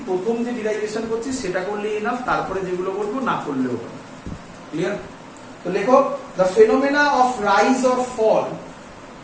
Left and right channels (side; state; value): both; identical; correlation 1.00